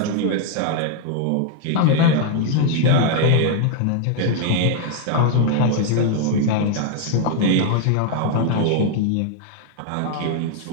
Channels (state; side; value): different; both; correlation 0.00